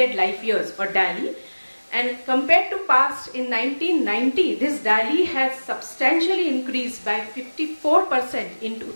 Life Years, or DALY. And compared to past, in 1990, this DALY has substantially increased by 54% in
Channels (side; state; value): both; inverted; correlation -1.00